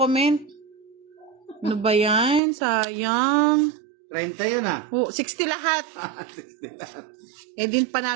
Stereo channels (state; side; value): drops out; left; at 2.4 s